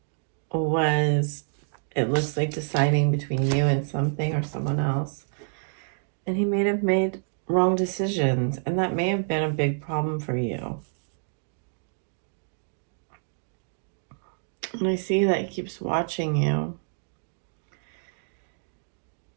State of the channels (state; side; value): silent; left; digital silence